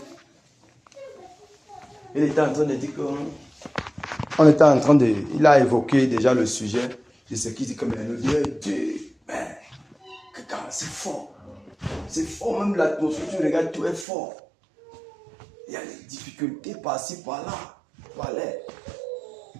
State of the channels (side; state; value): left; drops out; at 14.1 s